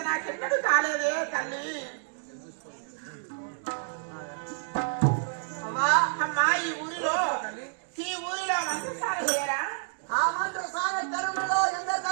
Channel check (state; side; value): silent; left; digital silence